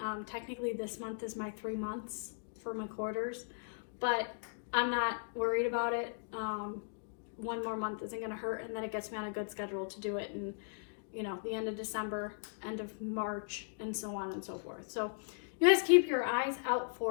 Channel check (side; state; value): right; silent; digital silence